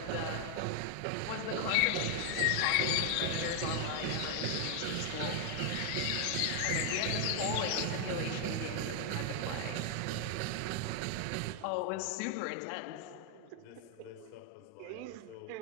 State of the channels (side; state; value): both; different; correlation 0.00